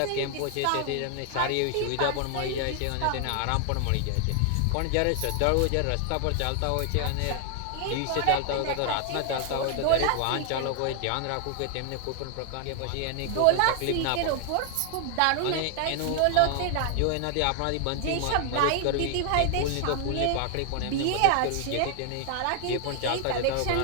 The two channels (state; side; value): different; both; correlation 0.00